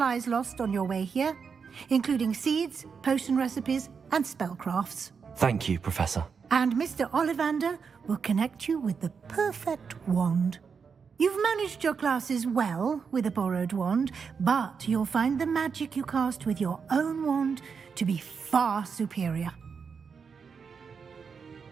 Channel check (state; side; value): quieter; left; 5.9 dB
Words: lost on your way here, including seeds, potion recipes, and spellcrafts. Thank you, Professor. And Mr. Ollivander will connect you with the perfect wand. You've managed your classes well with a borrowed wand, but you'll find the magic you cast with your own wand to be far superior.